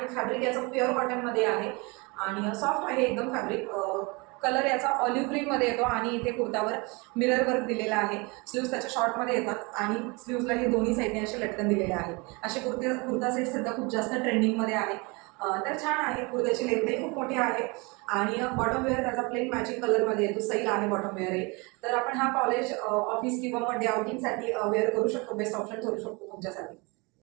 फॅब्रिक याचं प्युअर कॉटनमध्ये आहे आणि सॉफ्ट आहे एकदम फॅब्रिक. कलर याचा ऑलिव्ह ग्रीनमध्ये येतो आणि इथे कुर्तावर मिरर वर्क दिलेला आहे. स्लीव्स त्याच्या शॉर्टमध्ये येतात आणि स्लीव्सला हे दोन्ही साईडने असे लटकन दिलेले आहेत. असे कुर्ता सेट सध्या खूप जास्त ट्रेंडिंगमध्ये आहे. तर छान आहे. कुर्त्याची लेंथही खूप मोठी आहे आणि बॉटम वेअर त्याचा प्लेन मॅचिंग कलरमध्ये येतो, सैल आहे बॉटम वेअर आहे. तर आपण हा कॉलेज, ऑफिस किंवा मग डे आउटिंगसाठी वेअर करू शकतो, बेस्ट ऑप्शन ठरू शकतो तुमच्यासाठी.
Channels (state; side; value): quieter; left; 27.9 dB